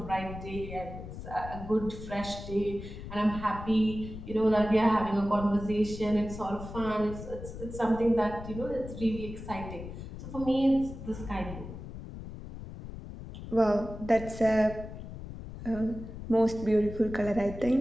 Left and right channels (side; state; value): left; noise; rumble, 11 dB below the sound